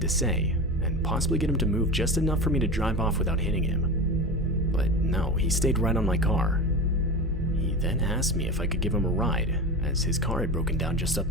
say, and possibly get him to move just enough for me to drive off without hitting him. But no, he stayed right on my car. He then asked me if I could give him a ride, as his car had broken down just up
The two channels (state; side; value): normal; both; correlation 0.27